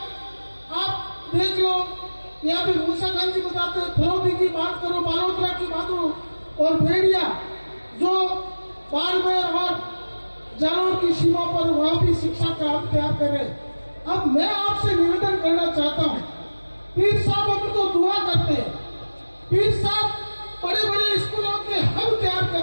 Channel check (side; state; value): both; inverted; correlation -1.00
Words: आप देख लो, यहाँ भी मूसा खान जी बताते हैं, फरौदी की बात करो, बालोतरा की बात करो, और भेड़िया जो बाड़मेर और जालौर की सीमा पर, वहां भी शिक्षा का हब तैयार करे। अब मैं आपसे निवेदन करना चाहता हूँ, पीर साहब उनको दुआ करते हैं, पीर साहब बड़े बड़े स्कूलों के हब तैयार